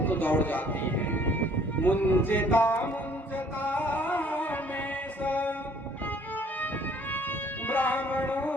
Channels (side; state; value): both; normal; correlation 0.59